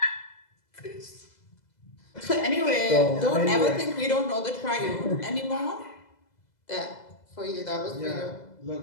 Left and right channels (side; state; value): right; late; 2.0 ms